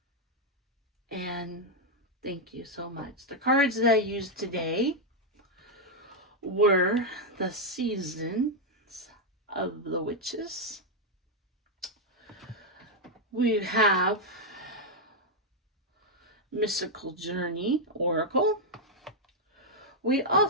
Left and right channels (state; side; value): normal; both; correlation 0.00